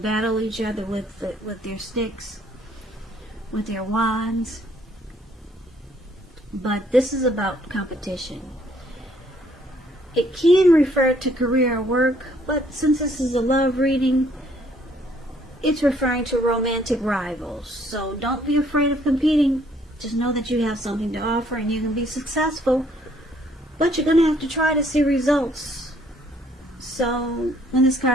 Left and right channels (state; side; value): normal; both; correlation 0.65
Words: each other with their sticks, with their wands. But this is about competition. It can refer to career or work, but since this is a love reading, it's referring to romantic rivals. So don't be afraid of competing. Just know that you have something to offer and you can be successful. But you're going to have to try to see results. So when this